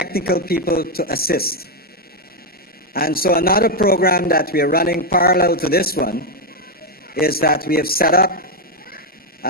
people to assist. And so another program that we are running parallel to this one is that we have set up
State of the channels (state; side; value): normal; both; correlation 0.03